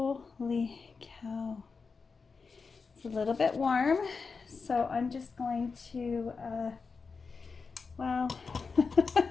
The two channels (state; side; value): quieter; right; 4.8 dB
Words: cow! It's a little bit warm, so I'm just going to. Wow,